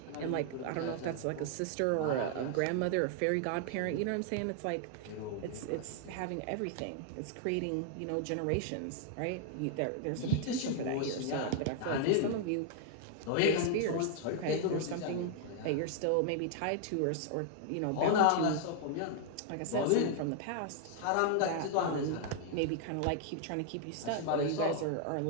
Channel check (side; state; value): both; different; correlation -0.01